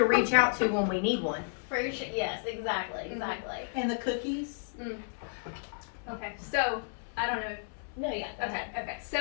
reach out to when we need one. For sure. Yes, exactly, exactly. And the cookies? Okay, so I don't know. No, yeah. Okay.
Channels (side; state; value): right; silent; 56 dB below the other